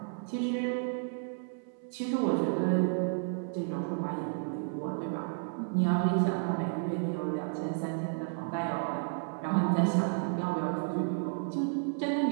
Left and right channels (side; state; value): left; silent; 56 dB below the other